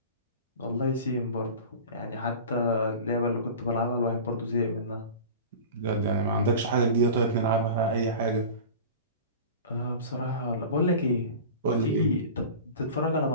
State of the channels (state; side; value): inverted; both; correlation -0.35